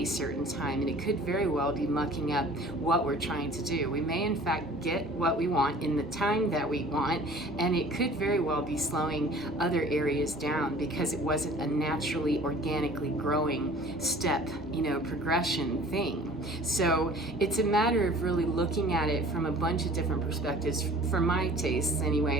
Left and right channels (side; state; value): both; normal; correlation 0.48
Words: certain time, and it could very well be mucking up what we're trying to do. We may in fact get what we want in the time that we want, and it could very well be slowing other areas down because it wasn't a naturally, organically growing step, progression thing. So it's a matter of really looking at it from a bunch of different perspectives. For my tastes